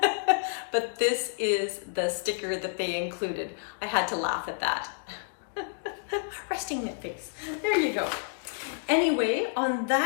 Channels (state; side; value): silent; right; digital silence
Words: but this is the sticker that they included. I had to laugh at that. Resting knit face. There you go. Anyway, on